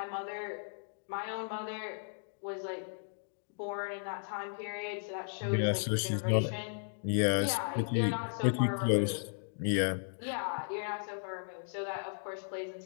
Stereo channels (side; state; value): right; silent; digital silence